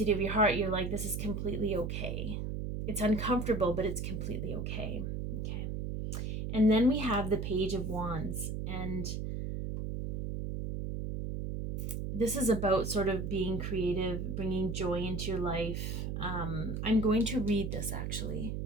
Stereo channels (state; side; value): noise; right; hum, 3 dB below the sound